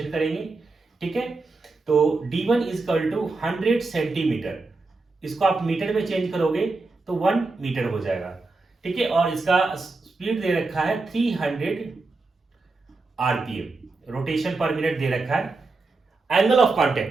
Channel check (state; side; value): quieter; left; 3.6 dB